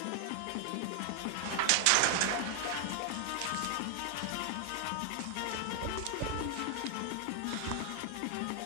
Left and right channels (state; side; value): different; both; correlation 0.00